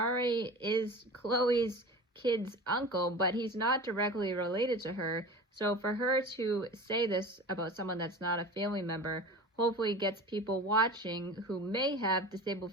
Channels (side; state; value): both; normal; correlation 0.35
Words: is Chloe's kid's uncle, but he's not directly related to her. So for her to say this about someone that's not a family member hopefully gets people watching who may have disabled